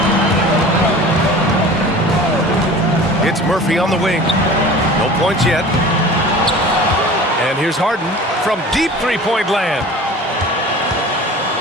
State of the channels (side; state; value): both; normal; correlation 0.41